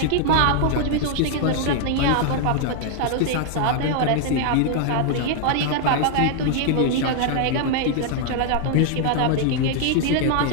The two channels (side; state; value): both; different; correlation 0.00